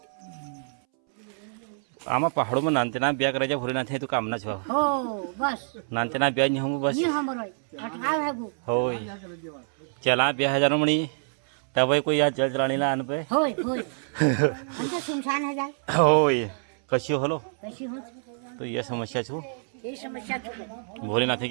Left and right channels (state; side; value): silent; left; 60 dB below the other